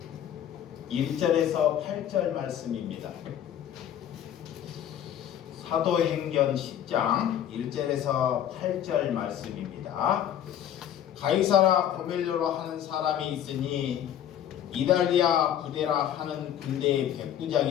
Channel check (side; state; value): right; quieter; 10.3 dB